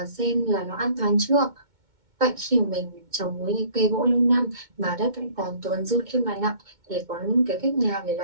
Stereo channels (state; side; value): late; left; 2.2 ms